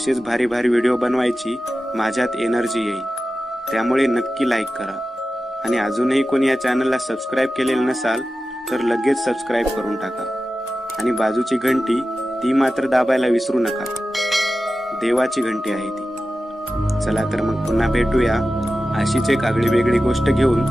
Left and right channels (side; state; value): both; normal; correlation 0.94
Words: भारी भारी व्हिडिओ बनवायची माझ्यात एनर्जी येईल. त्यामुळे नक्की लाईक करा आणि अजूनही कोणी या चॅनलला सबस्क्राईब केलेलं नसाल तर लगेच सबस्क्राईब करून टाका आणि बाजूची घंटी ती मात्र दाबायला विसरू नका. देवाची घंटी आहे ती. चला तर मग पुन्हा भेटूया अशीच एक आगळी वेगळी गोष्ट घेऊन